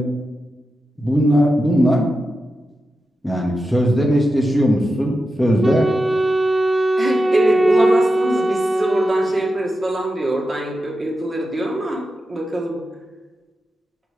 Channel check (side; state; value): both; normal; correlation 0.90